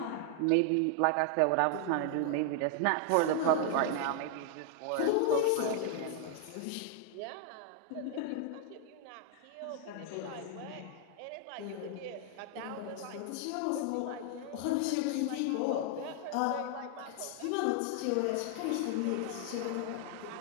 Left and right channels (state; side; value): different; both; correlation 0.00